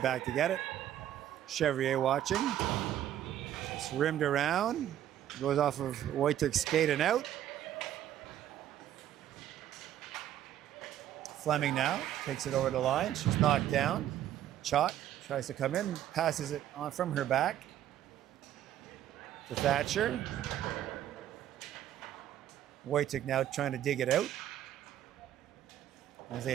back to get it. Chevrier watching. It's rimmed around. Goes off of Wojcik's skate and out. Fleming now takes it over the line. She's knocked down. Chalk tries to come in, passes it on from her back to Thatcher. Wojcik now trying to dig it out. As they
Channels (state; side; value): quieter; left; 11.6 dB